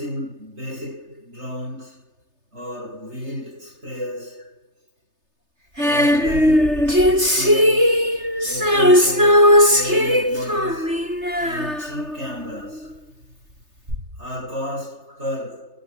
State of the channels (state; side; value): late; left; 3.3 ms